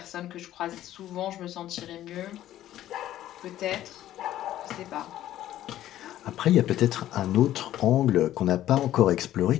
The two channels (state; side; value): quieter; right; 13.0 dB